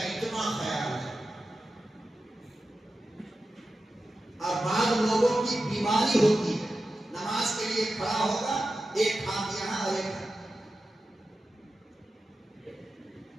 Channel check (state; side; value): normal; both; correlation 0.92